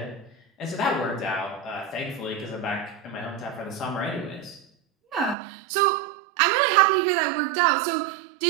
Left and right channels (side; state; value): left; drops out; at 5.4 s